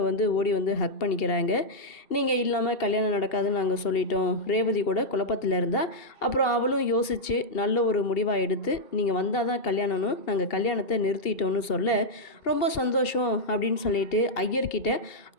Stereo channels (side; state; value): right; late; 2.7 ms